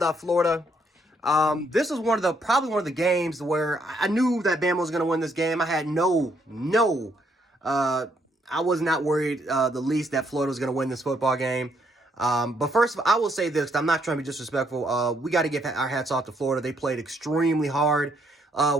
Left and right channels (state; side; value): normal; both; correlation 0.72